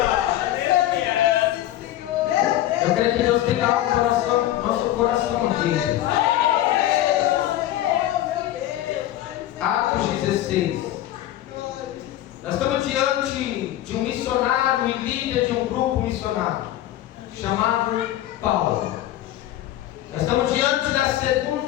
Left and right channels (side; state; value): right; quieter; 13.6 dB